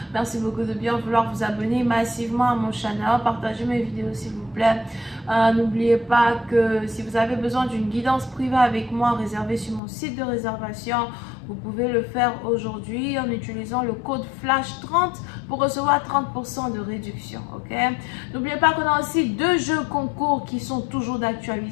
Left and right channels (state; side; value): drops out; right; at 9.8 s